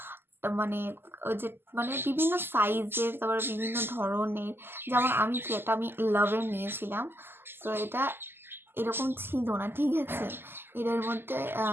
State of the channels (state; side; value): late; left; 0.11 ms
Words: মানে ওই যে মানে বিভিন্ন সাইজের, তারপরে বিভিন্ন ধরনের। যেমন আমি কি একটা আমি লাভের নিয়েছিলাম, তো এটা এরকম ছিল না, ঠিক আছে, এটার মধ্যে